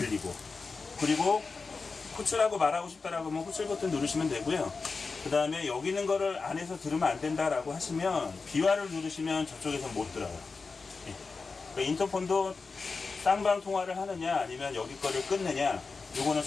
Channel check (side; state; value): right; quieter; 4.4 dB